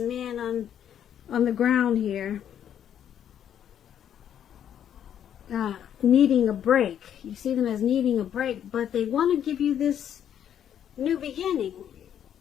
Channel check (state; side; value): quieter; right; 9.6 dB